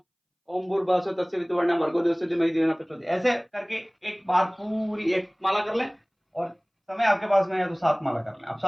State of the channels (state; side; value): identical; both; correlation 1.00